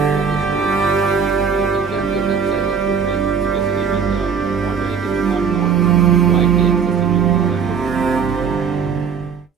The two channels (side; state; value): left; quieter; 6.2 dB